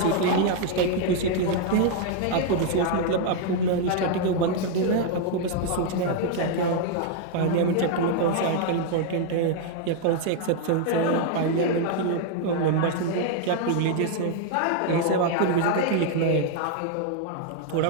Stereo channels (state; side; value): different; both; correlation 0.00